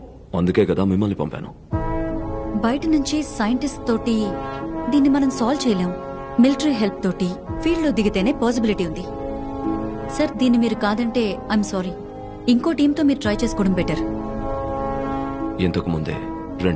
అందుకే కదా మిమ్మల్ని పంపాను. బయట నుంచి సైంటిస్ట్ తోటి దీన్ని మనం సాల్వ్ చేయలేం. మిలిటరీ హెల్ప్ తోటి ఫీల్డ్ లో దిగితేనే పాసిబిలిటీ ఉంది. సార్, దీన్ని మీరు కాదంటే ఐఎమ్ సారీ. ఇంకో టీంతో మీరు ట్రై చేసుకోవడం బెటర్. ఇంతకు ముందే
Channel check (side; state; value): both; identical; correlation 1.00